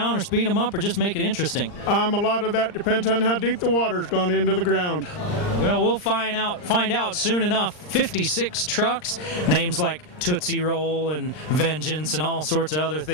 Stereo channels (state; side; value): late; right; 39 ms